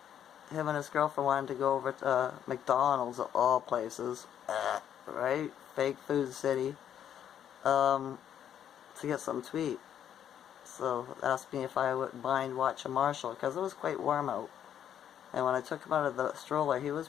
and his girlfriend wanted to go over to McDonald's, of all places, right? Fake food city. To get something to eat. So asked me if I wouldn't mind watching Marshall, because it was quite warm out. And when I took him out of the stroller, he was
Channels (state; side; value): quieter; right; 9.7 dB